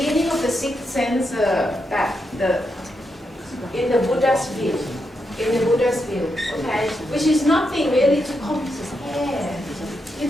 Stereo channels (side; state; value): both; normal; correlation 0.83